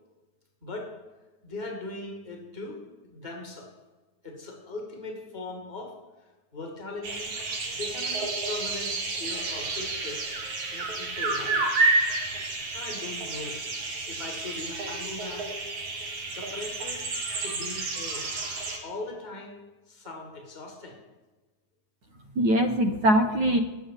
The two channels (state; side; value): late; left; 9.4 ms